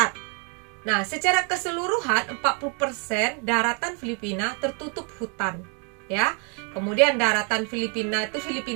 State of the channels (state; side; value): quieter; left; 36.7 dB